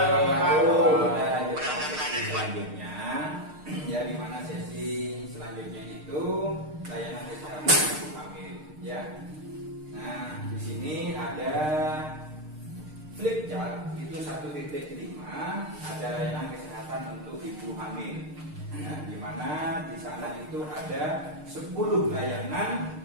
wabarakatuh. Kita lanjutkan sesi selanjutnya, ya, di mana sesi selanjutnya itu layanan kesehatan ibu hamil, ya. Nah, di sini ada flip chart itu 1.5, ada layanan kesehatan untuk ibu hamil. Nah, di mana di sana itu ada 10 layanan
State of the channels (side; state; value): left; late; 6.6 ms